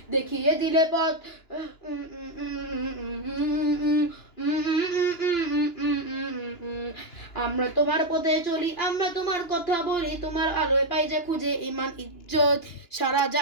দেখিয়ে দিলে পথ আমরা তোমার পথে চলি আমরা তোমার কথা বলি তোমার আলোয় পাই যে খুঁজে ইমান ইজ্জত সারা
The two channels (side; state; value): right; late; 2.9 ms